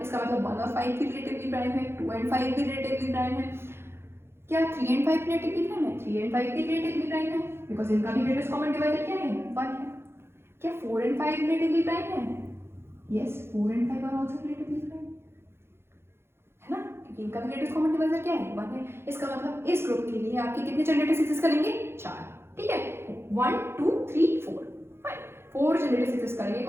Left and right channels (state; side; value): late; left; 0.12 ms